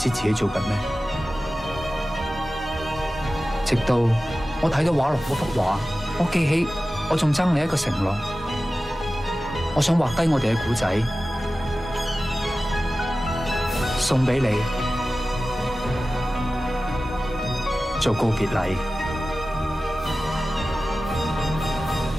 自己做緊咩，直到我睇到畫廊嗰幅畫，我記起我仲爭你一個承諾，我想畫低我哋嘅故仔，送俾你做告別禮。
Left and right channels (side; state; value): both; normal; correlation 0.95